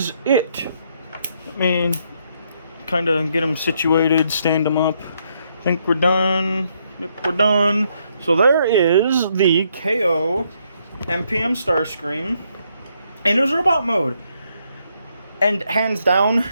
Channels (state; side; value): inverted; both; correlation -0.74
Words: it. Let me kind of get him situated, stand him up. I think we're done. Yep, we're done. So there is the KO MPM STARSCREAM in his robot mode. And hands down,